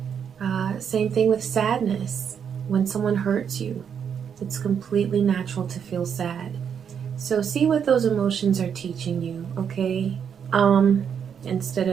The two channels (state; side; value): quieter; left; 7.6 dB